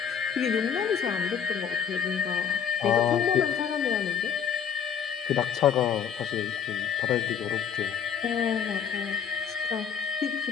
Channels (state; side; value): quieter; right; 7.7 dB